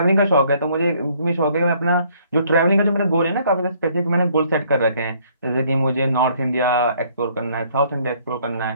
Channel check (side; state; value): both; inverted; correlation -0.63